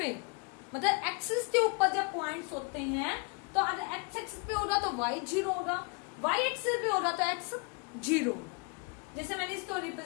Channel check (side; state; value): right; quieter; 33.5 dB